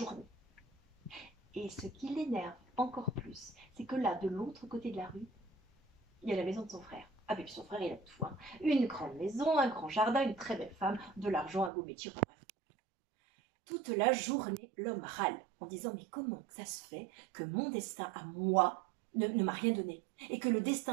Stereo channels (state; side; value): drops out; left; at 11.7 s